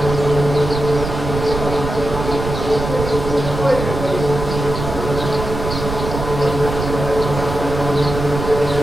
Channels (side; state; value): right; noise; rumble, 6 dB below the sound